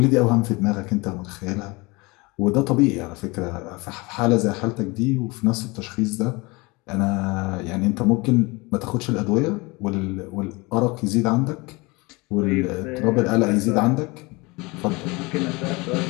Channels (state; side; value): quieter; right; 25.2 dB